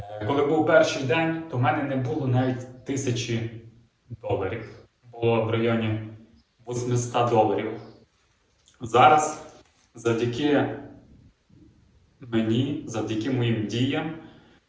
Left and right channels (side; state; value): both; identical; correlation 1.00